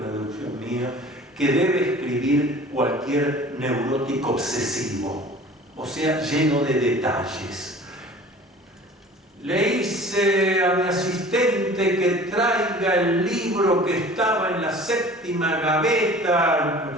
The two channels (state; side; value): normal; both; correlation 0.45